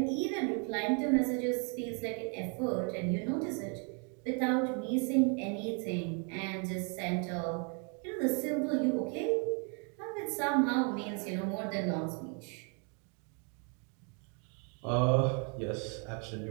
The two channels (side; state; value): left; quieter; 38.1 dB